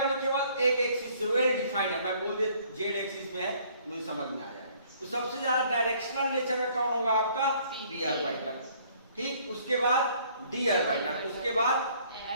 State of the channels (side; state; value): both; inverted; correlation -0.60